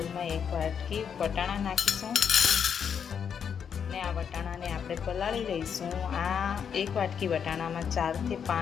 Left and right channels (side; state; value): right; quieter; 7.4 dB